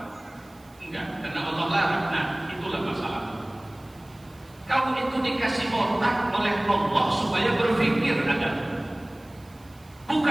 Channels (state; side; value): noise; right; hiss, 28 dB below the sound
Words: Enggak, karena Allah larang. dikasih otak oleh Allah supaya berpikir Adam.